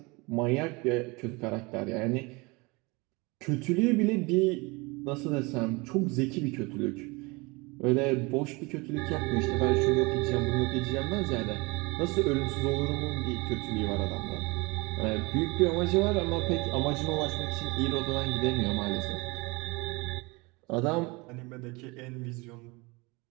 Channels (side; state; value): left; quieter; 26.1 dB